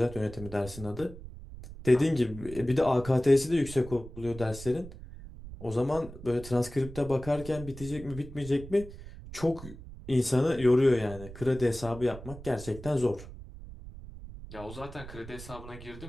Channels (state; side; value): noise; right; rumble, 14 dB below the sound